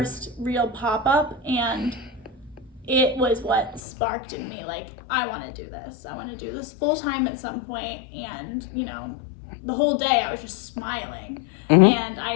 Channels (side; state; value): right; drops out; at 3.8 s